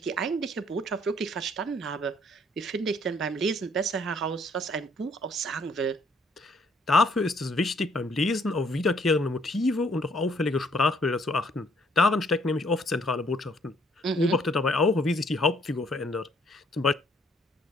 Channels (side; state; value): both; normal; correlation 0.65